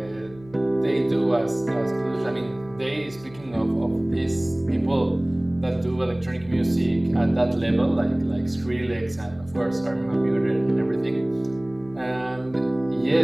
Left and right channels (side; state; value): left; noise; hum, 22 dB below the sound